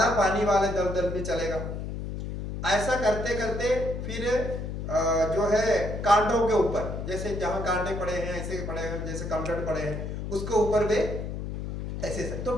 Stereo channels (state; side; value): noise; left; hum, 5 dB below the sound